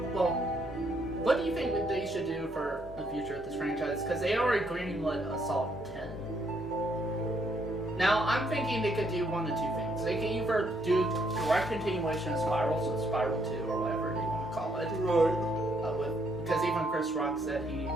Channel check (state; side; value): normal; both; correlation 0.72